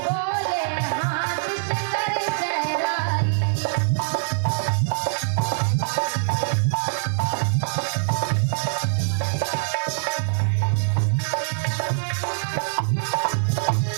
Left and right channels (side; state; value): left; silent; digital silence